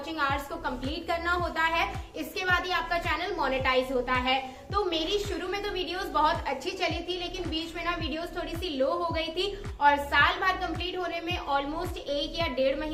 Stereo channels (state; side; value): identical; both; correlation 1.00